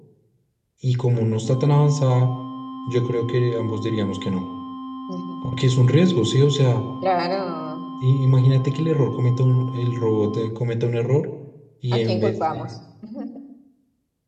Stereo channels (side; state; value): both; identical; correlation 1.00